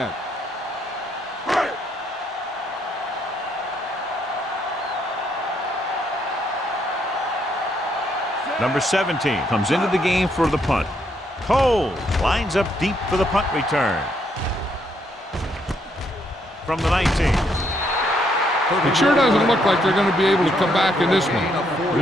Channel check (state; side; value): normal; both; correlation 0.73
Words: Number 17 comes into the game for the punt. Cole lines up deep for the punt return. From the 19. It sure doesn't look like they're going to be able to come back in this one. But